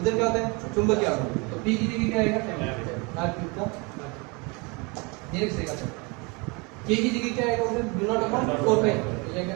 क्या होता है चुंबकीय आघूर्ण। तो p की जगह क्या आएगा r क्यूब का ये लिखेगा। k की जगह क्या आएगा उधर म्यू नॉट अपॉन 4 पाई, तो ये क्या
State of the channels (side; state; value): left; quieter; 29.3 dB